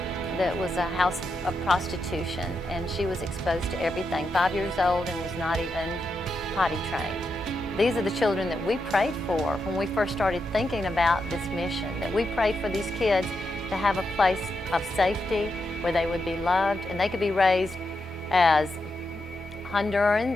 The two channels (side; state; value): both; normal; correlation 0.85